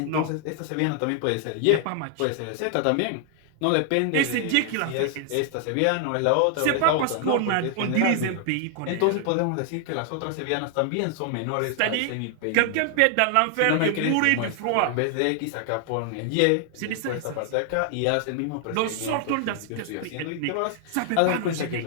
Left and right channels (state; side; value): different; both; correlation 0.00